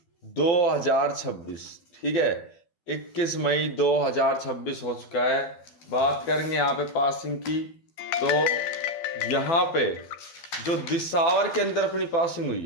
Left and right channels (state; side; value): late; right; 12 ms